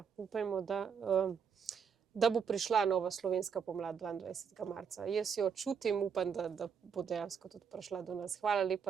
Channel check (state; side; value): quieter; left; 6.7 dB